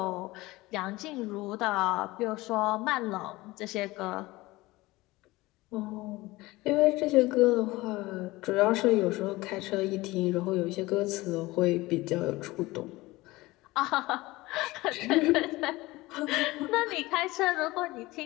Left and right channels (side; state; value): right; quieter; 20.1 dB